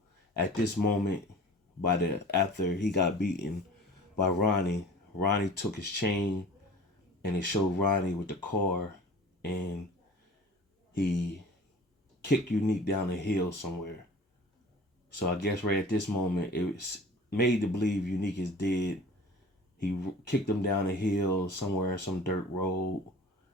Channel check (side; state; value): both; normal; correlation 0.42